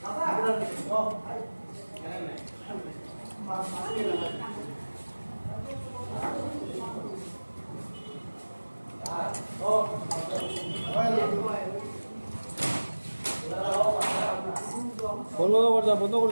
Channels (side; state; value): both; inverted; correlation -1.00